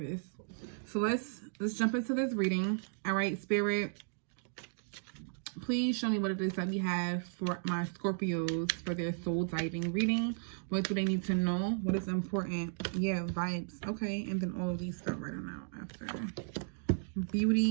So let's jump into this reading. All right, Spirit, please show me what it is that we have for my Scorpios for their soul diving reading. What do they need to know? What is important? Yeah, vibes. Okay, and then all of these stuff right on out after.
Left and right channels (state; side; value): silent; left; digital silence